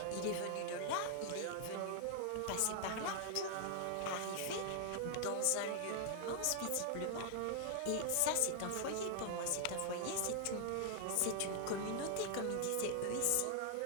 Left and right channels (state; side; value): different; both; correlation 0.00